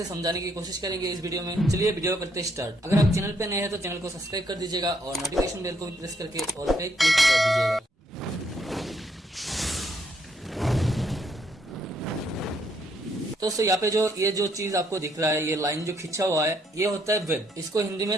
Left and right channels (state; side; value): normal; both; correlation 0.72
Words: समझाने की कोशिश करेंगे इस वीडियो में। चलिए वीडियो करते स्टार्ट। अगर आप चैनल पे नए हैं तो चैनल को सब्सक्राइब कर दीजिएगा और नोटिफिकेशन बेल को भी प्रेस करके ऑल पे क्लिक कर दीजिएगा। तो दोस्तों यहाँ पे ये जो चीज आपको दिख रहा है, ये लाइन जो खिंचा हुआ है, ये होता है वेव। इसको हिंदी में